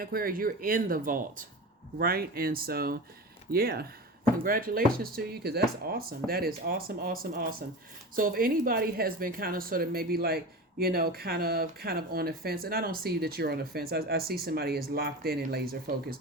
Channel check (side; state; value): both; normal; correlation 0.29